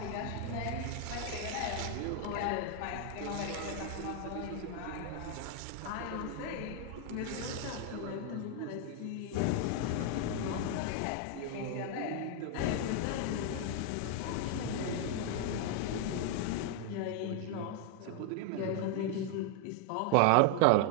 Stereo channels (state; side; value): different; both; correlation 0.00